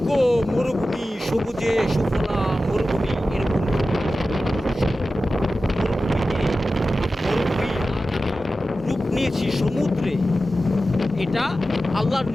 মরুভূমি, সবুজে সুফলা মরুভূমি, এরকম মরুভূমি রূপ নিয়েছি সমুদ্রে। এটা আল্লাহর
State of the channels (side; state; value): both; normal; correlation 0.94